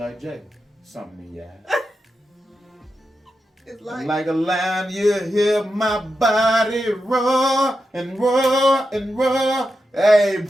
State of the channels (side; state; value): both; normal; correlation 0.89